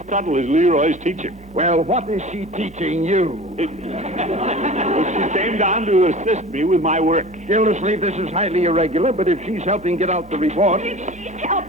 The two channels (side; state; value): both; normal; correlation 0.38